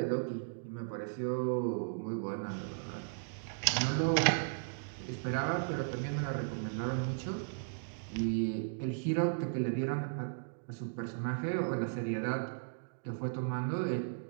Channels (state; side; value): silent; left; digital silence